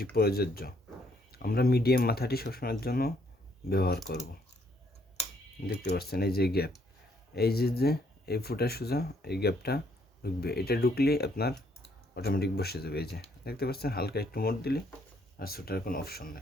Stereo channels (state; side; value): normal; both; correlation 0.68